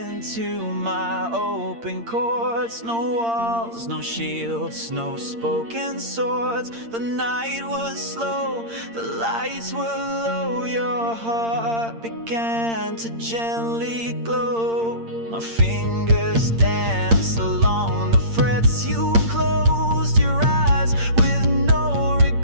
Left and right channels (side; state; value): left; late; 8.7 ms